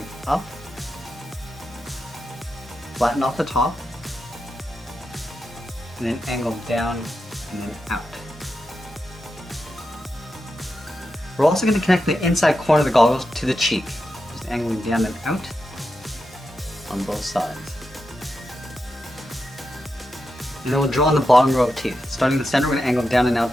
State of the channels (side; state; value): both; normal; correlation 0.88